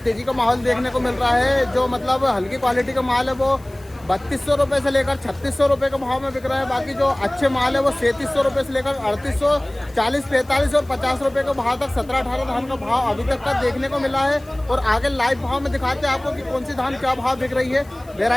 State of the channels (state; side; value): noise; left; hiss, 27 dB below the sound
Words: तेजी का माहौल देखने को मिल रहा है। जो मतलब हल्की क्वालिटी का माल है वो 3200 रुपये से लेकर 3600 रुपये के भाव में बिक रहा है। बाकी जो अच्छे माल है वो 3700 रुपये से लेकर 3840, 45 और 50 रुपये के भाव तक 17-18 धान का भाव अभी तक का देखने को मिला है। और आगे लाइव भाव में दिखाते हैं आपको कि कौन सी धान क्या भाव बिक रही है,